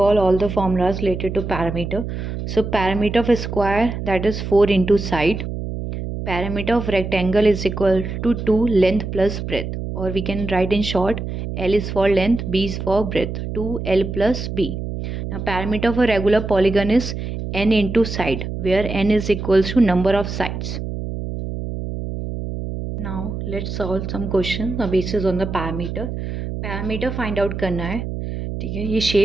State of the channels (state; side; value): noise; right; hum, 5 dB below the sound